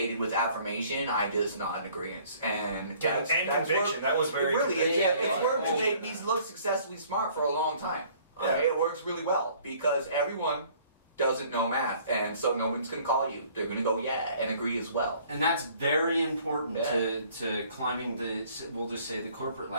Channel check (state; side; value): inverted; both; correlation -0.56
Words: with affirmation, I just nod in agreement. And that's conviction. That was very. It really is. Yeah, It's worked to yeah. make me look successfully smart for a long time. Okay? It works really well because everyone doesn't know math, and so no one's going to call you. They're going to go, yeah, and agree as well. And that's very important to climbing we'll just say the corporate